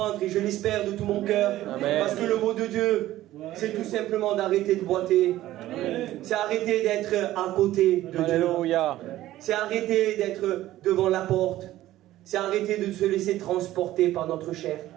et je l'espère de tout mon cœur. Parce que le mot de Dieu, c'est tout simplement d'arrêter de boiter. C'est arrêter d'être à côté de Alléluia. Dieu. C'est arrêter d'être devant la porte. C'est arrêter de se laisser transporter par notre chair.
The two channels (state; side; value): quieter; left; 14.8 dB